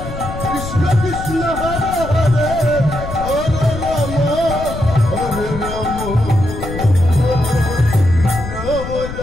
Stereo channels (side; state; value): left; noise; rumble, 8 dB below the sound